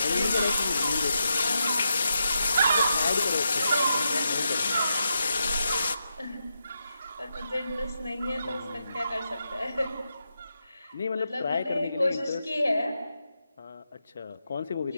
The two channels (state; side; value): inverted; both; correlation -0.85